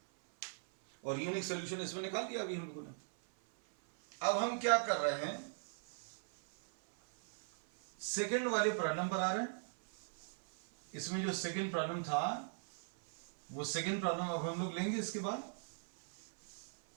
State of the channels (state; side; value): silent; left; 52 dB below the other